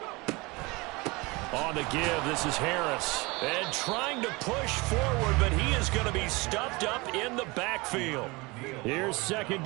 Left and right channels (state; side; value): quieter; left; 24.8 dB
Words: On the give, this is Harris. And trying to push forward, but he is going to be stuffed up in the backfield. Here's 2nd